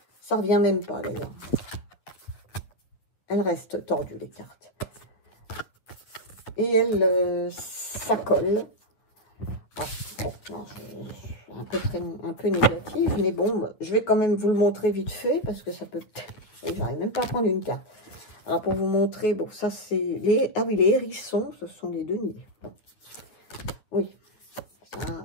ça revient même pas d'ailleurs. Elles restent tordues les cartes. Et ça colle. Ah, bon, non, un peu négative, mais bon, je vais quand même vous le montrer vite fait parce que ça peut. J'arrive même pas à prendre une carte. Alors pour vous montrer, bon, ça c'est les. Ah oui, les hérissons, ce sont les deniers. Bon. Oui.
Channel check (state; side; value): late; right; 9.3 ms